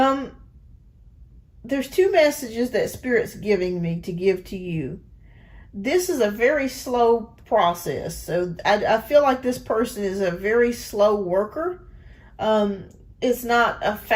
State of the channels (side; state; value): both; identical; correlation 1.00